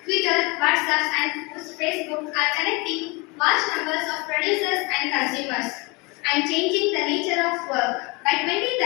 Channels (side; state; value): right; quieter; 27.4 dB